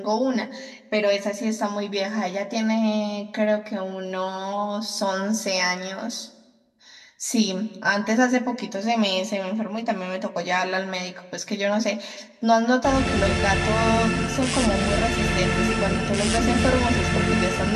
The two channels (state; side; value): identical; both; correlation 1.00